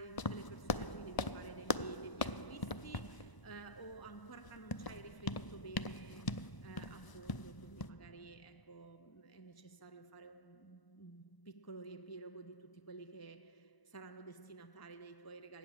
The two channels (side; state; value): right; late; 1.0 ms